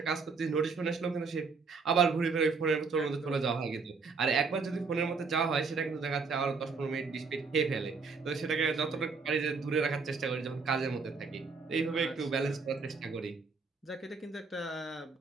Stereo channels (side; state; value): left; quieter; 4.8 dB